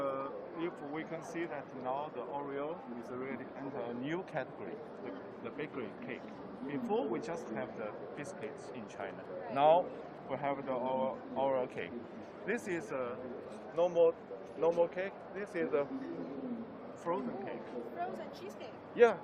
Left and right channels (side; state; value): both; identical; correlation 1.00